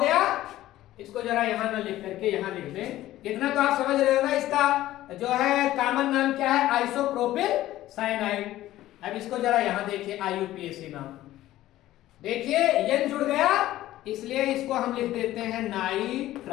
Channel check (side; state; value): right; quieter; 14.8 dB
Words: गया? इसको जरा यहां ना लिख करके यहां लिख दें। इतना तो आप समझ रहे हो ना। इसका जो है कॉमन नाम क्या है? Isopropyl cyanide. अब इसको जरा यहां देखिए, आईयूपीएसी नाम देखिए, N जुड़ गया इसलिए इसको हम लिख देते हैं